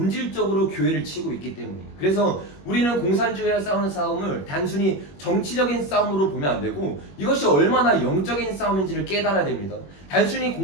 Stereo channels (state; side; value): late; right; 21 ms